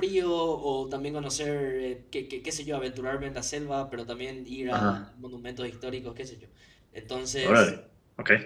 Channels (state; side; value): identical; both; correlation 1.00